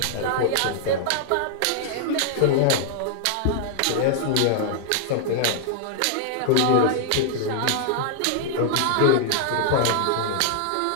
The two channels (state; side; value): different; both; correlation 0.00